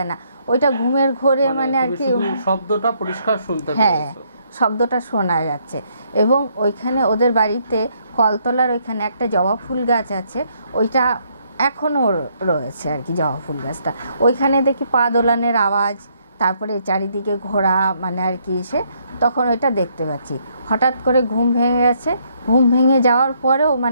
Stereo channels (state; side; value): inverted; both; correlation -0.71